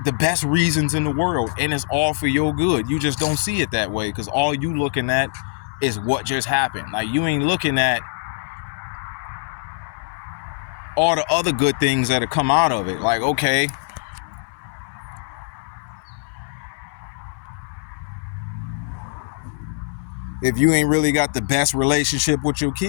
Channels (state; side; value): silent; right; 61 dB below the other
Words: the best reasons in the world, and it's all for your good. You just don't see it that way because all you looking at is what just happened. Like, you ain't looking at all the other good things that have come out of it. Like, okay, if you ain't really got the best relationship with your